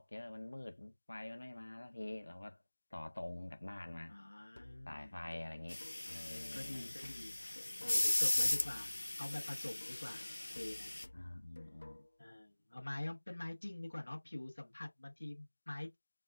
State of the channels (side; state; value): both; inverted; correlation -1.00